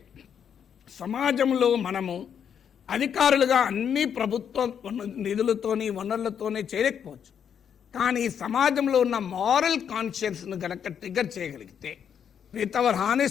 సమాజంలో మనము అధికారులుగా అన్ని ప్రభుత్వ నిధులతోని వనరులతోనే చేయలేకపోవచ్చు, కానీ సమాజంలో ఉన్న మారల్ కాన్షియన్స్ను కనుక ట్రిగర్ చేయగలిగితే with our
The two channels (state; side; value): quieter; right; 8.1 dB